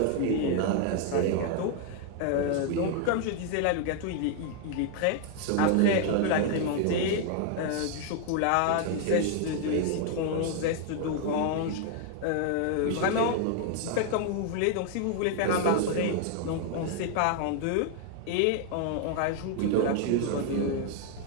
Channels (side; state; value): both; different; correlation 0.00